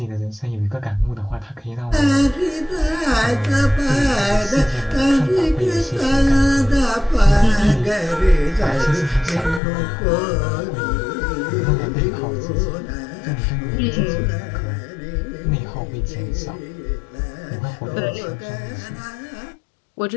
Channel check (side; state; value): right; drops out; at 9.6 s